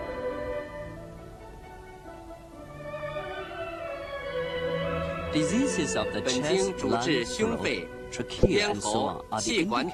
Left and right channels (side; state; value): both; identical; correlation 1.00